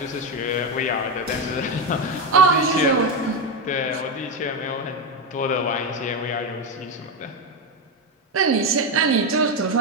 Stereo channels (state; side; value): normal; both; correlation 0.10